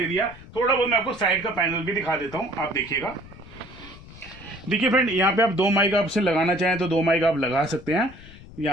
दिया। थोड़ा बहुत मैं आपको साइड का पैनल भी दिखा देता हूँ, आप देखिएगा। देखिए फ्रेंड, यहाँ पे आप 2 माइक आपसे लगाना चाहें तो 2 माइक आप लगा सकते हैं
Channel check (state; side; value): noise; left; rumble, 19 dB below the sound